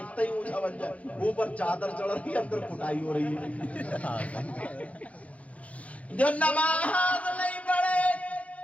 ہی اونچا بن جائے, اوپر چادر چڑھ رہی ہے, اندر کٹائی ہو رہی ہے. جو نماز نہیں پڑھے,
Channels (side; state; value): right; late; 0.066 ms